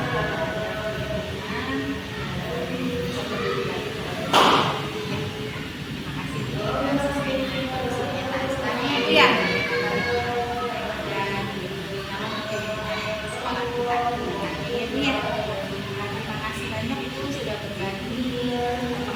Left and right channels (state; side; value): identical; both; correlation 1.00